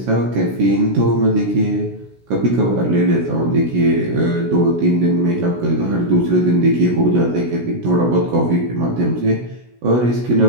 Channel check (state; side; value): late; left; 16 ms